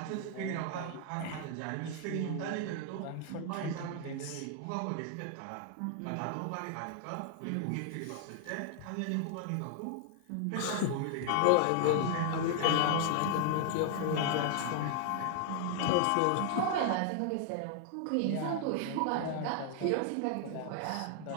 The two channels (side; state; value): both; different; correlation 0.00